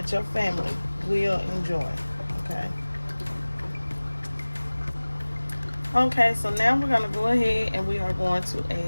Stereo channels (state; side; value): inverted; both; correlation -1.00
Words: your family will enjoy, okay? Okay, so now we're gonna go ahead and we are going to